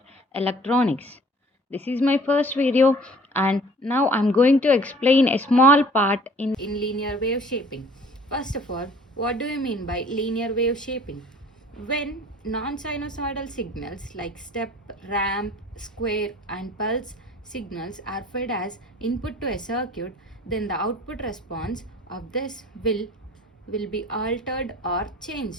electronics. This is my first video, and now I'm going to explain a small part in linear wave shaping. First of all, what do you mean by linear wave shaping? When non-sinusoidal signals like step, ramp, square, and pulse signals are fed as input to a circuit, then the output response of this will be altered or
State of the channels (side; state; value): both; normal; correlation 0.50